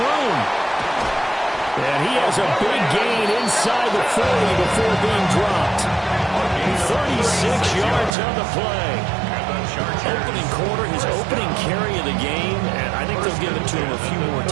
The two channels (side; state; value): left; drops out; at 8.2 s